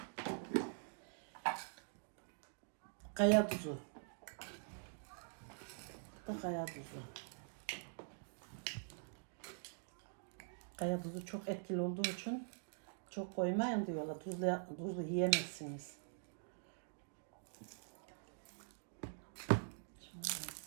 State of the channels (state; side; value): silent; left; digital silence